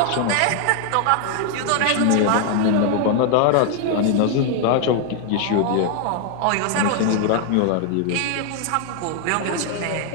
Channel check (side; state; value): both; different; correlation 0.00